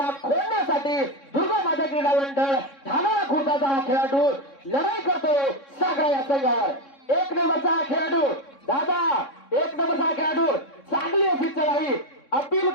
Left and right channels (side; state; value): right; late; 3.6 ms